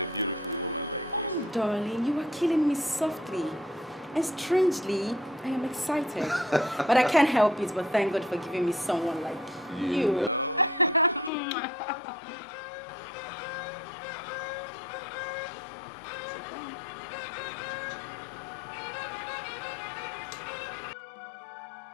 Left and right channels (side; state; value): right; drops out; at 11.3 s